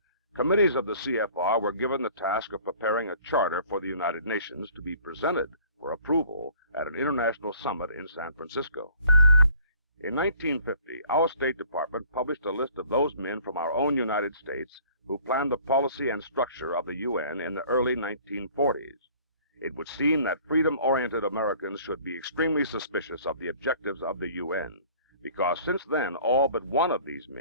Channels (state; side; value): inverted; both; correlation -0.53